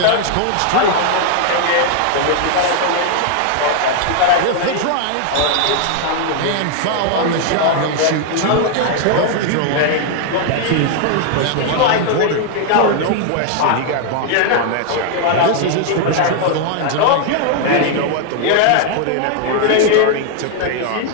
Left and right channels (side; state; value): both; different; correlation 0.00